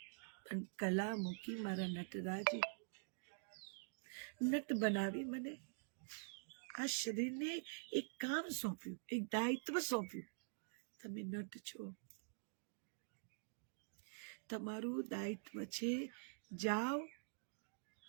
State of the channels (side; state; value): left; silent; digital silence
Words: અને કલા મૂકી મારા નટરાજે, નટ બનાવી મને. આ શરીરને એક કામ સોંપ્યું, એક દાયિત્વ સોંપ્યું. તમે નટ છો, તમારું દાયિત્વ છે. જાઓ